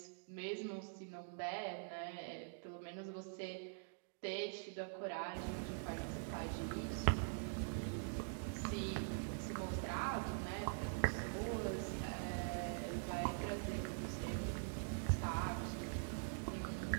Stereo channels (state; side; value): silent; left; digital silence